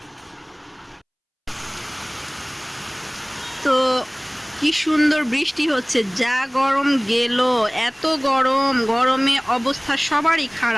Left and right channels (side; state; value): both; identical; correlation 1.00